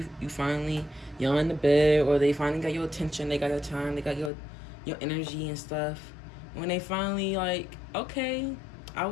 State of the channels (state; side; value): drops out; right; at 4.3 s